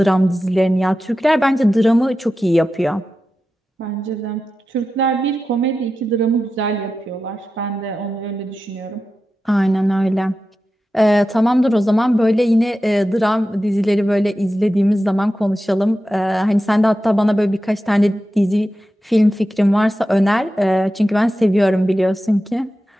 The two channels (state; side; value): normal; both; correlation 0.92